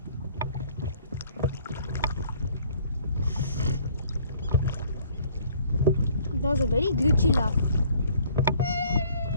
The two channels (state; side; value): inverted; both; correlation -0.58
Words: That was a very glitchy laugh.